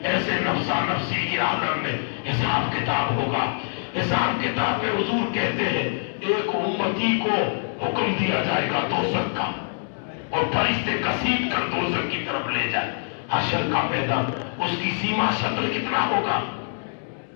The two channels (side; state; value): right; silent; 62 dB below the other